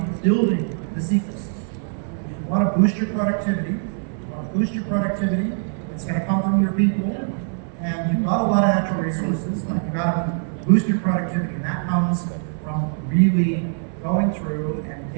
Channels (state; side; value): silent; left; 64 dB below the other